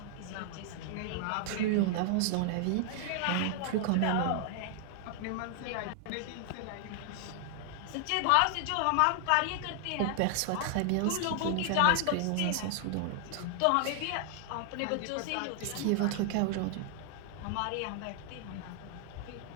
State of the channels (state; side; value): different; both; correlation 0.00